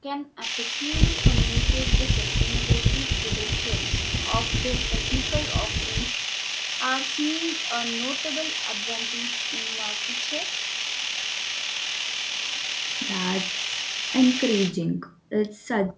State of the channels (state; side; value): identical; both; correlation 1.00